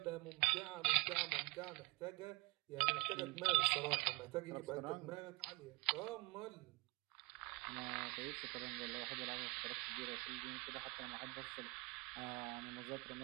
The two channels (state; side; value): quieter; left; 26.2 dB